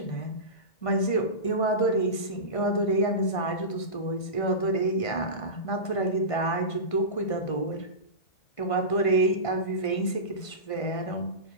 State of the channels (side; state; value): right; late; 1.5 ms